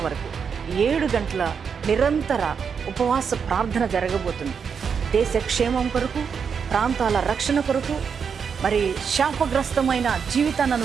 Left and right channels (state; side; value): quieter; left; 6.5 dB